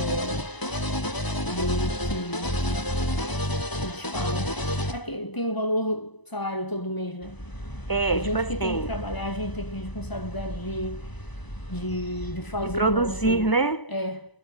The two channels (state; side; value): late; right; 1.0 ms